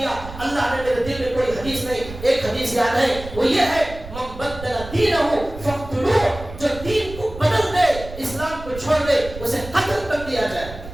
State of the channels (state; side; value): noise; right; rumble, 13 dB below the sound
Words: اللہ نے میرے دل میں کوئی حدیث نہیں. ایک حدیث یاد ہے, وہ یہ ہے من بدل دینہ فاقتلوہ, جو دین کو بدل دے, اسلام کو چھوڑ دے, اسے قتل کر دیا جائے.